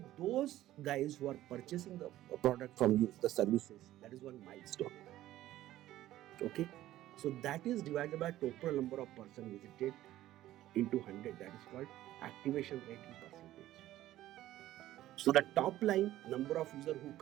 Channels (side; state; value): left; quieter; 14.4 dB